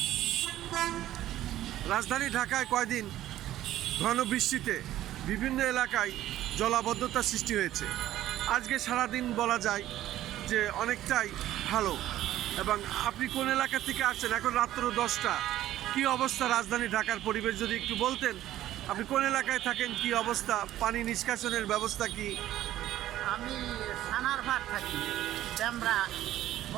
রাজধানী ঢাকায় কয়দিন ঘন বৃষ্টিতে বিভিন্ন এলাকায় জলাবদ্ধতার সৃষ্টি হয়েছে। আজকে সারাদিন বলা যায় যে অনেকটাই ভালো। এবং আপনি কোন এলাকা থেকে আসছেন? এখন রাত্র 10টা, কি অবস্থা রাজধানী ঢাকার পরিবেশ যদি একটু বলতেন? আপনি কোন এলাকায় থাকেন, কি অবস্থা, পানি নিষ্কাশনের ব্যবস্থা কি? আমি সানারপাড় থাকি, ড্যামরা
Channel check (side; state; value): left; quieter; 13.6 dB